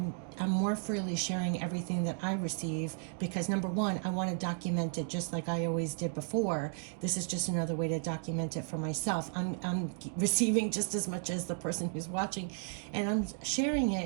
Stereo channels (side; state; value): left; silent; 55 dB below the other